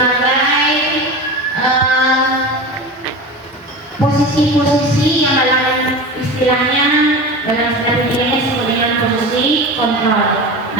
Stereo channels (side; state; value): both; normal; correlation 0.29